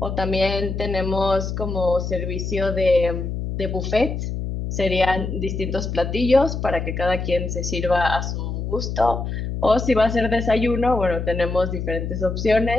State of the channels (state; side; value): noise; left; hum, 4 dB below the sound